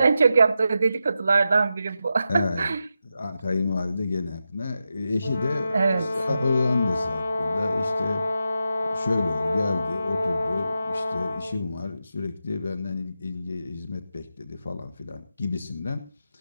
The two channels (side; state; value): both; inverted; correlation -0.89